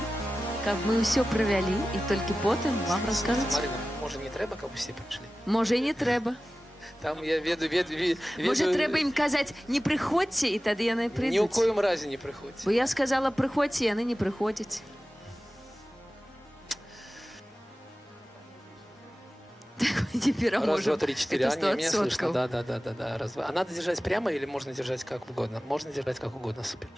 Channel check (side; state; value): both; normal; correlation 0.95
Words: каб мы ўсё правялі і толькі потым вам раскажуць. Марина, може не треба, каб усе прийшли? Можа, і не трэба. Там я веду... Можа, трэба ім казаць, не прыходзьце, і тады яны Ні ў прыйдуць. коім разе не прыходзь. Бо я сказала, прыходзьце, яны не прыходзяць. Не пераможем. Раз, два, три, четыре. Это А, не, меня 100%. слышно. Да. Раз, два. А надо держать прямо или можно держать как угодно? Можно держать как угодно, супер.